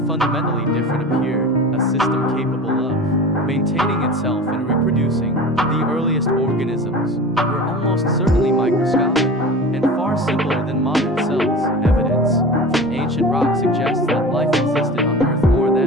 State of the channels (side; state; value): both; normal; correlation 0.34